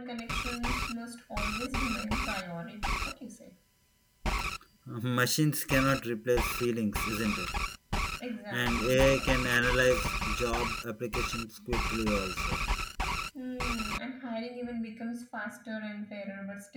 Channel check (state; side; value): identical; both; correlation 1.00